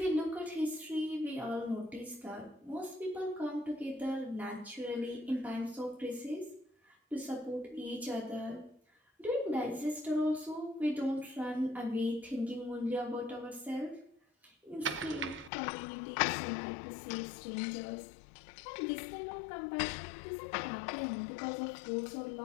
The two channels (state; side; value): drops out; right; at 15.5 s